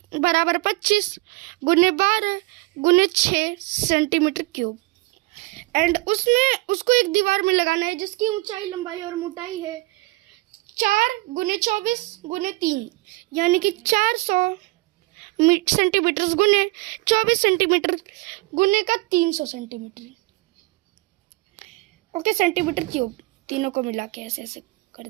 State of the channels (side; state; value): left; quieter; 23.1 dB